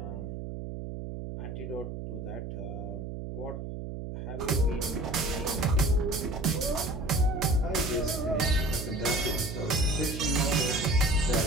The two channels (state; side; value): noise; right; hum, 7 dB below the sound